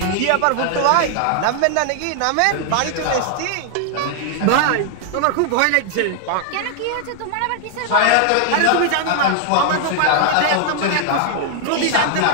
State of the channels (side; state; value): both; different; correlation 0.00